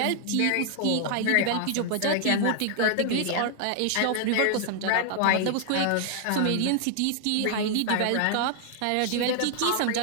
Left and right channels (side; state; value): both; different; correlation 0.00